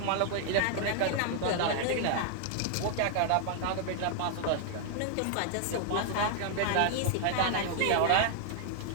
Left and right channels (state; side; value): different; both; correlation 0.00